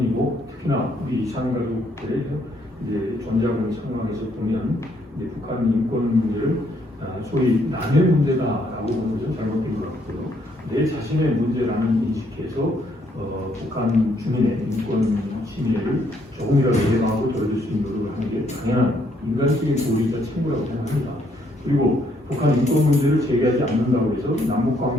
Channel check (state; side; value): normal; both; correlation 0.70